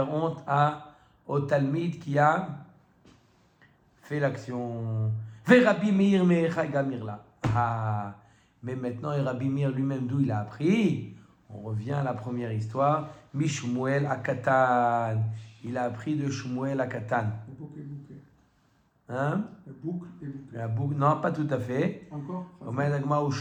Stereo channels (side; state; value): both; identical; correlation 1.00